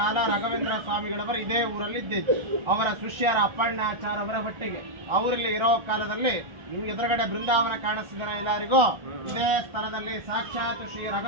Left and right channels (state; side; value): late; left; 1.3 ms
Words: ರಾಘವೇಂದ್ರ ಸ್ವಾಮಿಗಳವರು ಇದೇ ಊರಲ್ಲಿ ಇದ್ದಿದ್ದು. ಅವರ ಶಿಷ್ಯರ ಅಪ್ಪಣ್ಣಾಚಾರ್ಯವರ ಒಟ್ಟಿಗೆ ಅವರಲ್ಲಿ ಇರೋ ಕಾಲದಲ್ಲಿ ನಿಮ್ಗೆ ಎದುರುಗಡೆ ಬೃಂದಾವನ ಕಾಣಿಸ್ತಿದ್ದಾರೆ ಎಲ್ಲರಿಗೂ. ಇದೇ ಸ್ಥಳದಲ್ಲಿ ಸಾಕ್ಷಾತ್ ಶ್ರೀ